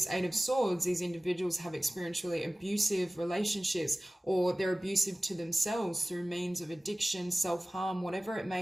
Eight of Swords, these individuals have experienced really abusive relationships, or they're abusive to themselves through means of addiction, self-harm, whatever it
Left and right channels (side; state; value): both; normal; correlation 0.97